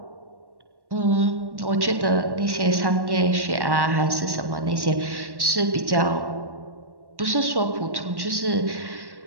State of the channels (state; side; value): late; left; 1.1 ms